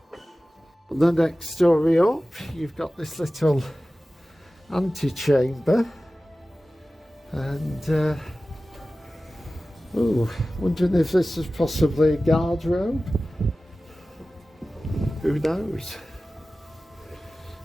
the next story up, you've got this little antechamber, and wondering if this is possibly a guardrobe. Who knows?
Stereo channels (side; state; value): both; normal; correlation 0.96